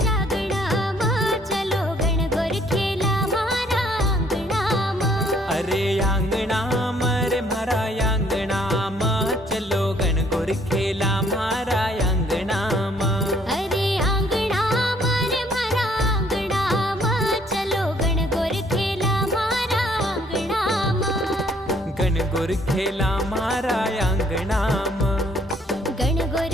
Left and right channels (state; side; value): normal; both; correlation 0.63